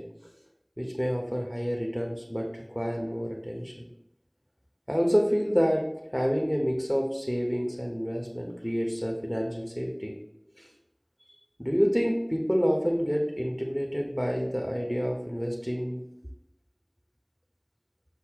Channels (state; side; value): identical; both; correlation 1.00